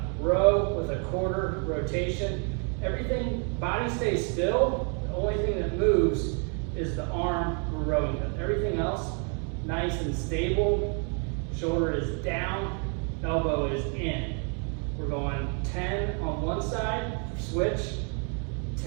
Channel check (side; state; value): left; quieter; 39.9 dB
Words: row with a quarter rotation. Everything, body stays still. The only thing that moves is the arm we're rowing with. Everything else, nice and stable. Shoulder is down, elbow is in. We're going 10 on one side, switch,